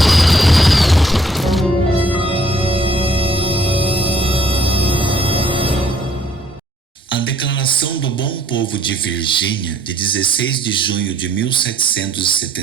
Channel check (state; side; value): normal; both; correlation 0.64